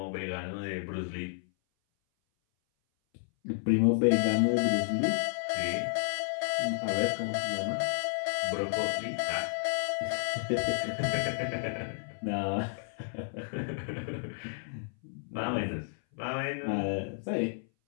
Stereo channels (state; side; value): silent; right; 57 dB below the other